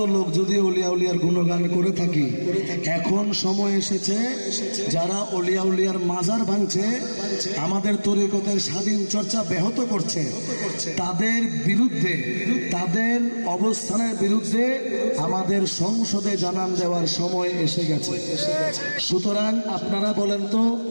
লোক যদি অলিয়া উলিয়ার গুণগান করে থাকি, এখন সময় এসেছে যারা অলিয়া উলিয়ার মাজার ভাঙছে, আমাদের তরিকতের স্বাধীন চর্চা ব্যাহত করছে, তাদের বিরুদ্ধে, তাদের অবস্থানের বিরুদ্ধে আমাদের সংসদে জানান দেওয়ার সময় এসে গেছে। সুতরাং আপনারা বলেন তো,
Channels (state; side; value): inverted; both; correlation -1.00